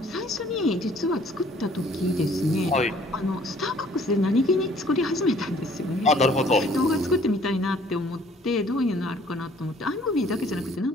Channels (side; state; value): both; normal; correlation 0.58